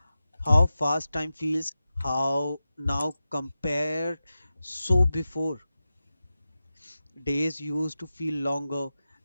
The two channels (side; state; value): both; inverted; correlation -0.93